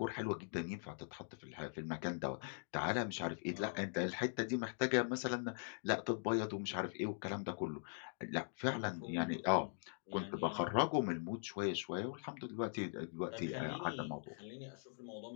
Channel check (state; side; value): silent; right; digital silence